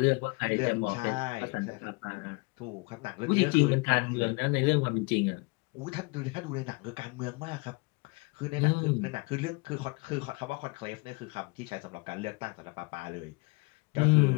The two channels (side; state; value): right; quieter; 28.0 dB